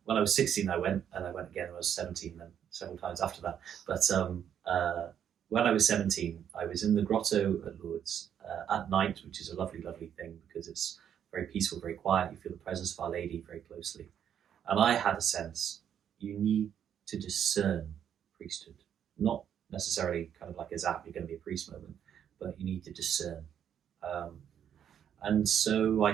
when I was 16 I went, and I went again when I was 17, then several times after that. But when I was 17, I was in the grotto at Lourdes at night, which is a lovely, lovely thing because it's very peaceful, very quiet. You feel the presence of Our Lady very closely. And I had a sense, you need to discern priesthood. Not necessarily kind of like a zap, you're going to be a priest moment, but you need to discern. And so I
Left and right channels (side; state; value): left; quieter; 9.1 dB